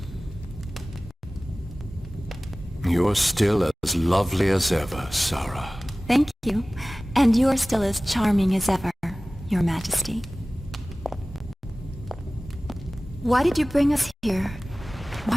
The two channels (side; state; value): both; normal; correlation 0.97